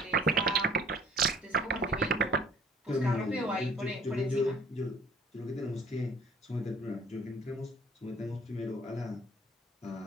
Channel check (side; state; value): both; normal; correlation 0.55